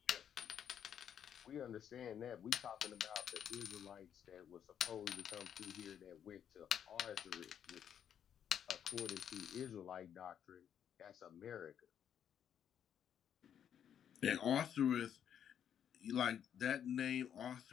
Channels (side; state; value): right; quieter; 9.0 dB